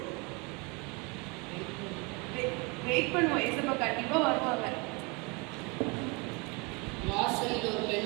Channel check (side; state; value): left; quieter; 29.1 dB